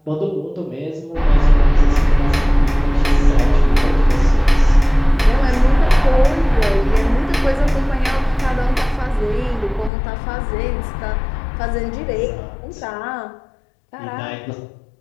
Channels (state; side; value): drops out; right; at 9.9 s